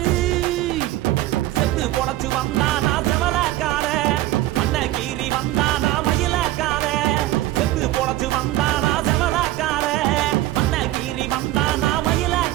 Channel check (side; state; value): left; quieter; 15.7 dB